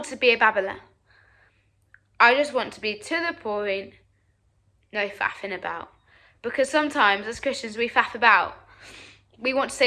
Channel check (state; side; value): identical; both; correlation 1.00